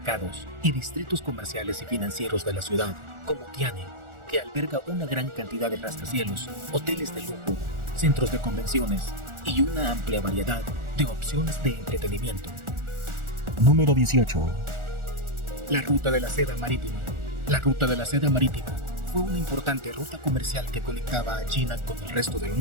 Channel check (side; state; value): left; late; 1.4 ms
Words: y distritos comerciales y financieros de la ciudad, como Tianhe, que alberga una gran cantidad de rascacielos, hoteles de lujo, centros de convenciones y una amplia variedad de opciones de entretenimiento. Número 18. La Ruta de la Seda Marítima. La Ruta de la Seda Marítima fue una importante ruta comercial que conectaba a China con el resto del